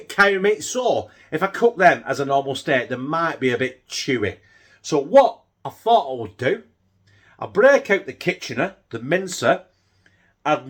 meat. So, if I cook them as a normal steak, they might be a bit chewy. So, what I thought I would do, I'll break out the Kitchener, the mincer, I'd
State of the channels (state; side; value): identical; both; correlation 1.00